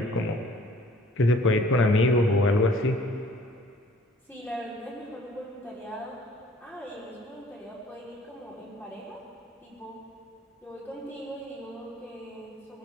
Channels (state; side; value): normal; both; correlation 0.55